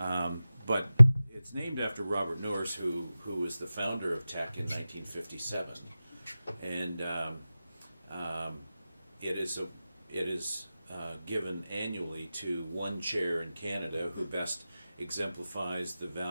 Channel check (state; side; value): inverted; both; correlation -0.95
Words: it's named after Robert Norris, who was the founder of TEC in 1957, and it is given annually to one chair in Canada who best exemplifies the